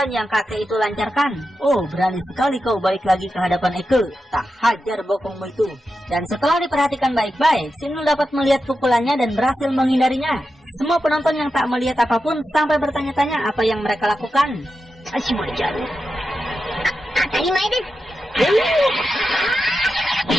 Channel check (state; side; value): normal; both; correlation 0.89